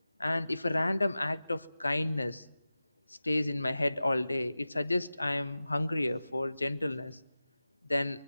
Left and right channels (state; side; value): inverted; both; correlation -0.95